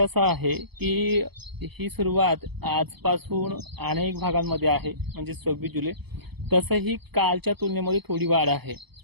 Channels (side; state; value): left; late; 0.98 ms